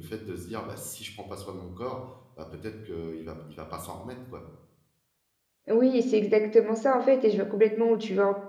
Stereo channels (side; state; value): both; identical; correlation 1.00